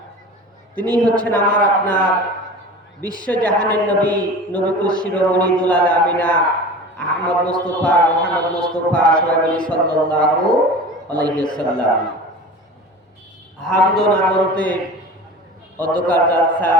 তিনি হচ্ছেন আমার আপনার বিশ্ব জাহানের নবী, নবীকুল শিরোমণি দুলাল আমিনা আহমদ মুস্তাফা মুহাম্মদ মুস্তাফা সাল্লাল্লাহু আলাইহি ওয়াসাল্লাম। হামদ ও নামতে অধ্যকার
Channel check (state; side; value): normal; both; correlation 0.36